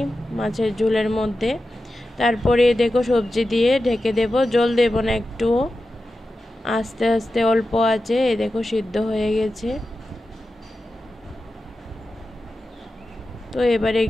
মাছের ঝোলের মধ্যে। তারপরে দেখো সবজি দিয়ে ঢেকে দেব, জল দেব না একটুও, আস্তে আস্তে অল্প আছে। এই দেখো সিদ্ধ হয়ে গেছে। তো এবারে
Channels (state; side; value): normal; both; correlation 0.92